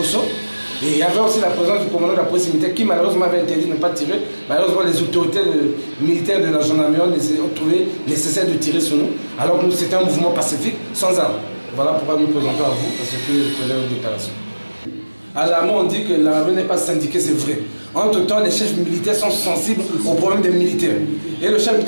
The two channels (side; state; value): both; inverted; correlation -1.00